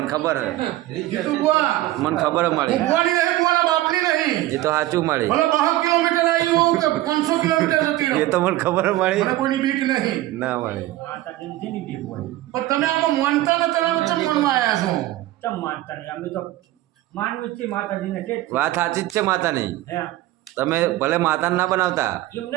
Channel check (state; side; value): quieter; left; 16.0 dB